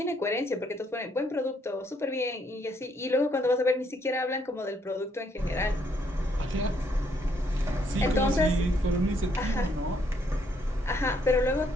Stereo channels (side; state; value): both; normal; correlation 0.70